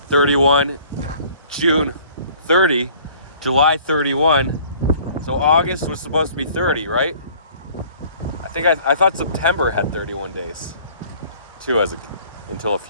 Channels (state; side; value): inverted; both; correlation -0.53